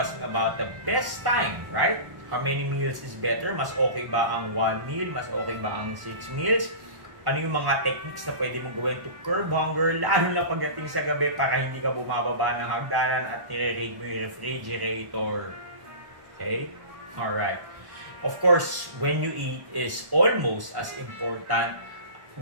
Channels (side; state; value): left; late; 1.1 ms